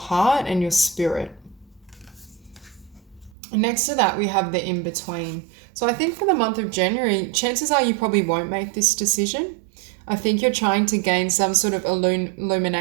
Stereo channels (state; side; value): drops out; left; at 3.4 s